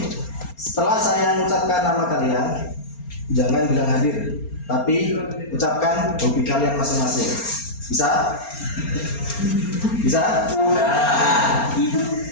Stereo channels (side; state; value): right; late; 4.3 ms